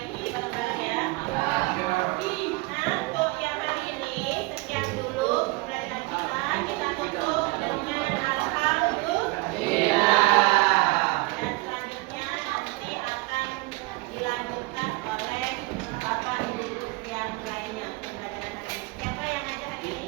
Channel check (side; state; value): left; quieter; 23.8 dB